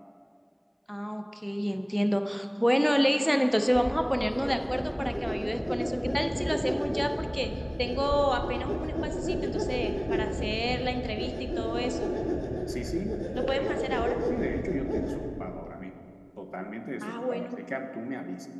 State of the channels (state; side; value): identical; both; correlation 1.00